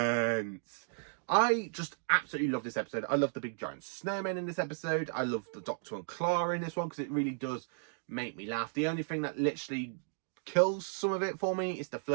I just absolutely love this episode. I love the big giant snowman in this episode. I love the Doctor and Clara in this one because it really does make me laugh. The only thing that literally kills some of it for me is the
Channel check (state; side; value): silent; left; digital silence